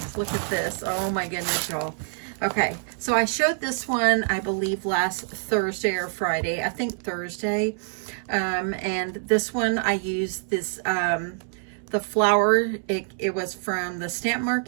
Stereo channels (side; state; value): left; silent; 61 dB below the other